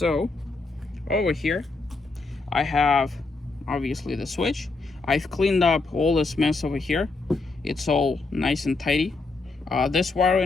over here I have obviously the switch. I've cleaned up all this mess over here. It's all nice and tidy. This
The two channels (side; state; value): right; quieter; 3.7 dB